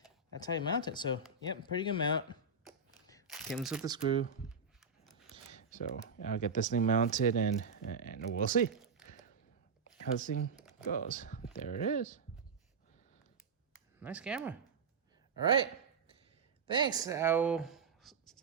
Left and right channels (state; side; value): quieter; left; 4.7 dB